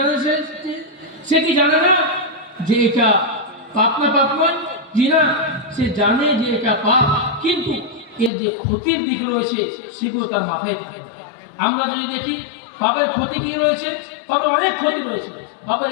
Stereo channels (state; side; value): drops out; right; at 8.3 s